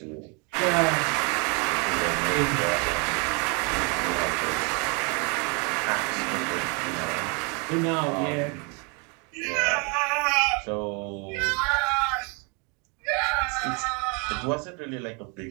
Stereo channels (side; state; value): left; quieter; 33.1 dB